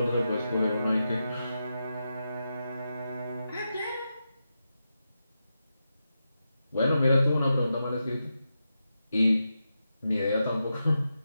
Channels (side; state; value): both; inverted; correlation -0.88